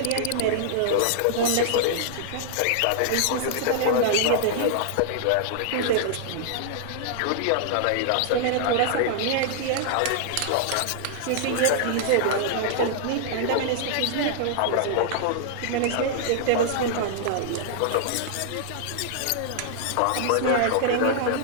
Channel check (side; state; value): both; different; correlation -0.01